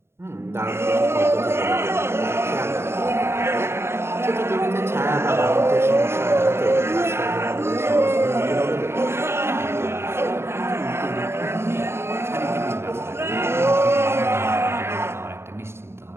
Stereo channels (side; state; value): left; late; 0.12 ms